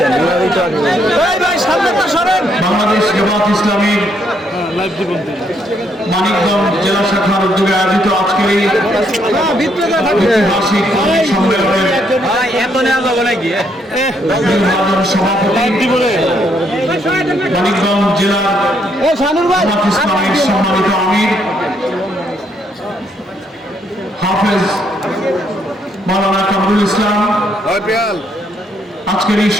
বাংলাদেশ জামাত ইসলামীর মানিকগঞ্জ জেলা শাখার উদ্যোগে আয়োজিত আজকের এই ঐতিহাসিক সম্মেলনের সভাপতি মানিকগঞ্জ জেলার জামাত ইসলামীর সম্মানিত আমির হাফেজ মাওলানা কামরুল ইসলাম, আজকের এই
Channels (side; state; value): both; normal; correlation 0.73